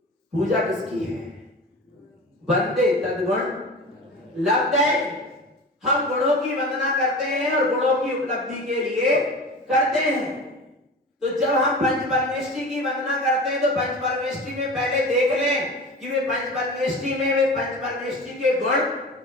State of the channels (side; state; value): both; normal; correlation 0.33